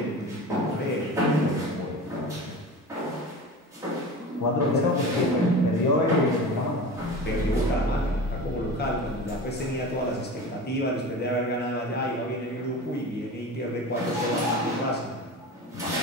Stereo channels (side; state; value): both; normal; correlation 0.32